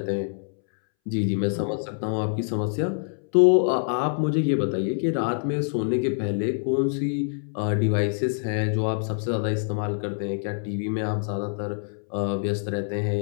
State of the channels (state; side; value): silent; right; 61 dB below the other